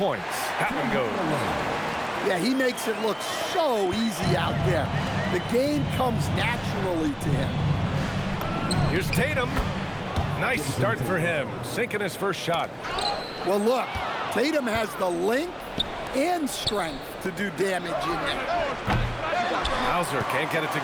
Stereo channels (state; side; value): identical; both; correlation 1.00